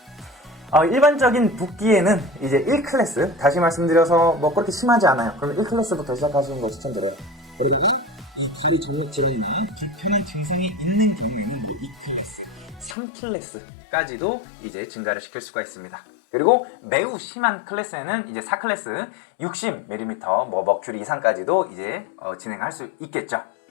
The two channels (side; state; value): right; drops out; at 13.0 s